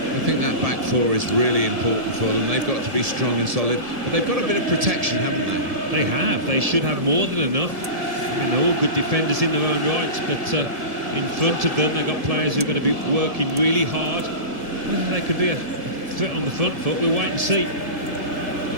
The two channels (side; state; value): left; late; 1.7 ms